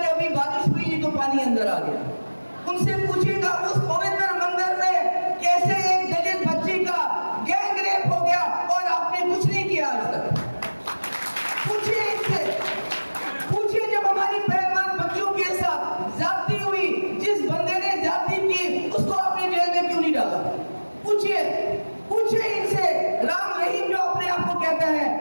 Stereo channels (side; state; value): both; inverted; correlation -1.00